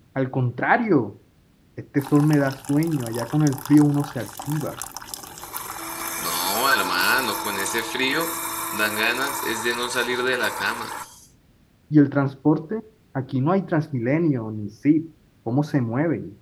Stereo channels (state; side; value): identical; both; correlation 1.00